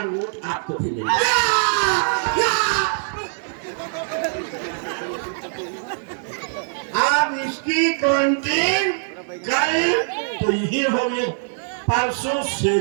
वोट आपको भी मिलेंगे। आप इसकी काउंटिंग कल तो यही होगी, परसों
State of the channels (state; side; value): silent; left; digital silence